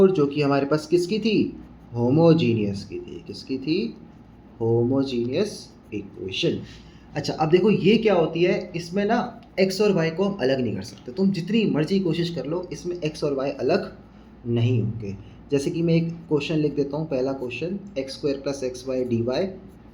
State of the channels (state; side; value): identical; both; correlation 1.00